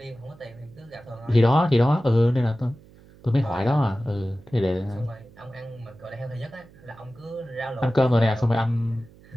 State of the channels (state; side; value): noise; right; hum, 25 dB below the sound